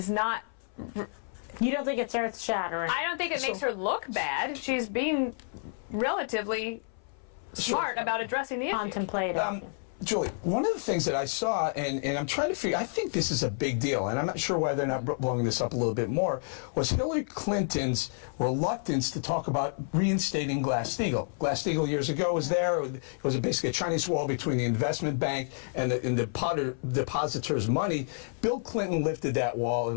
not... You don't think it's earth-shattering? I don't think it makes her look bad. She's being relatively smart about addressing the issue. Contemplative. Julie, one of the things that I saw, and I'm trying to figure, I think this is a big deal, and I'm not sure why they're not blowing this up a little bit more, was Hillary Clinton's reluctance to talk about reinstating Glass-Steagall. Glass-Steagall years ago was there. It was basically a Chinese wall between the investment bank and the depositors' money. Bill Clinton lifted that wall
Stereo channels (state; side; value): silent; right; 58 dB below the other